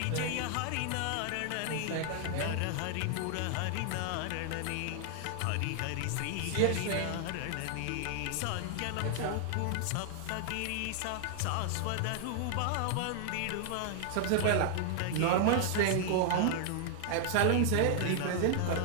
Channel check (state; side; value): different; both; correlation 0.00